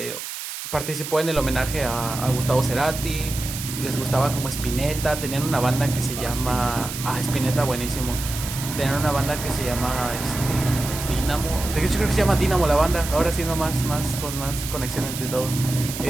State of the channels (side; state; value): right; noise; hiss, 8 dB below the sound